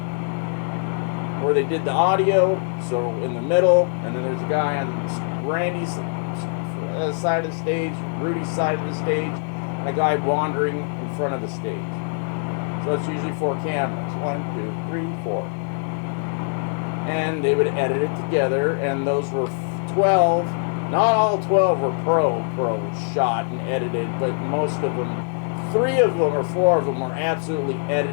where they did the audio, so in the middle, and then there's a guy on Randy's side of the stage, Rudy's side of the stage, and a guy wandering in front of the stage. So it's usually 4 cameras. 1, 2, 3, 4. And they would edit it together, and those were 12. Not all 12 were pro shot and edited, but most of them, 3 of them or 4 of them were absolutely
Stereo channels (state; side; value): silent; right; 60 dB below the other